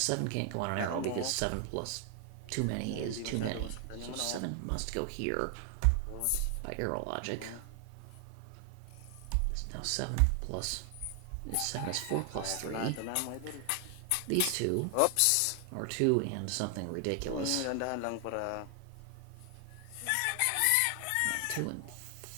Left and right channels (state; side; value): different; both; correlation 0.00